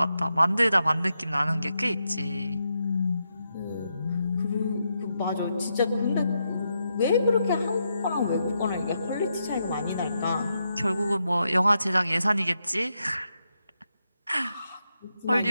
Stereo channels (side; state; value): both; inverted; correlation -0.83